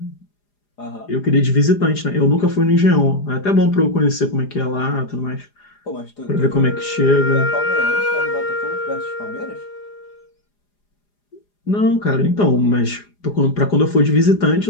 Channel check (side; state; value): right; late; 4.9 ms